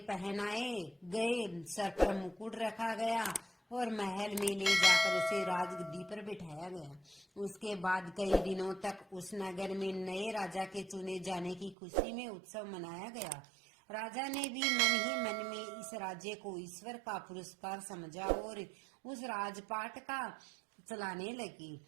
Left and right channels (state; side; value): drops out; left; at 11.8 s